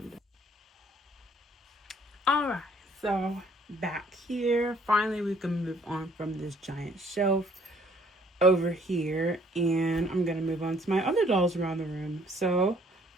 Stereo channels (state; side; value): normal; both; correlation 0.61